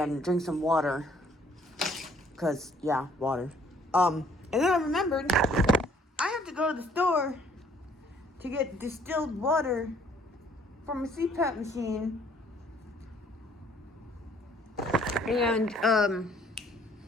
drink some water. Cause, yeah, water. And then I remembered I have to go to the store to get distilled water from a CPAP machine. And,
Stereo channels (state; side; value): normal; both; correlation 0.61